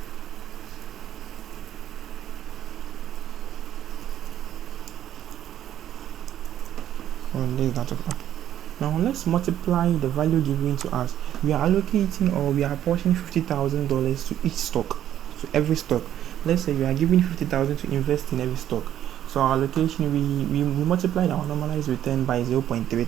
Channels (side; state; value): left; quieter; 11.1 dB